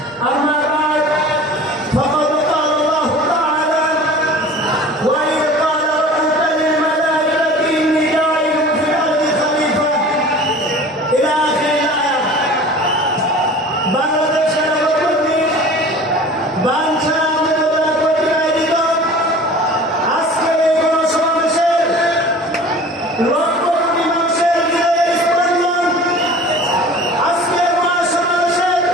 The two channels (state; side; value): normal; both; correlation 0.42